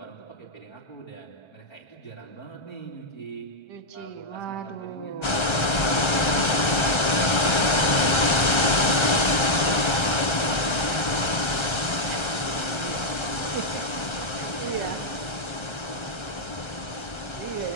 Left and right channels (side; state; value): right; late; 1.3 ms